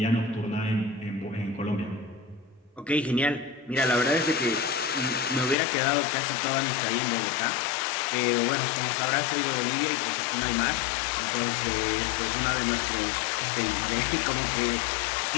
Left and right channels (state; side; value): drops out; right; at 5.6 s